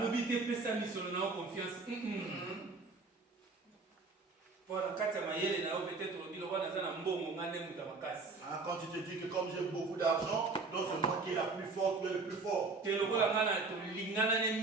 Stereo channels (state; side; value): quieter; left; 3.9 dB